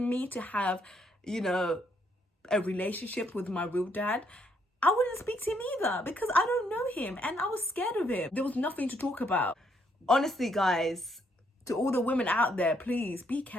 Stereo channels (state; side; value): normal; both; correlation 0.72